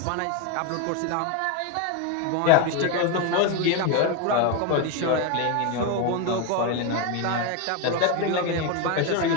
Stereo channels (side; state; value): both; different; correlation 0.02